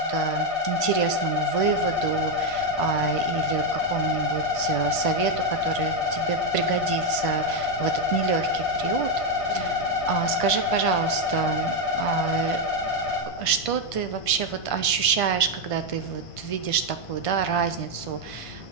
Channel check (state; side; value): late; right; 1.5 ms